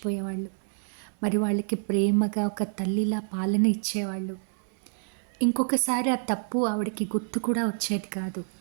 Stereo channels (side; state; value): left; silent; digital silence